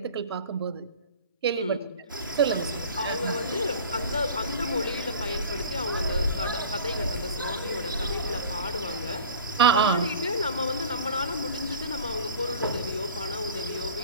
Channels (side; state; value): both; inverted; correlation -0.39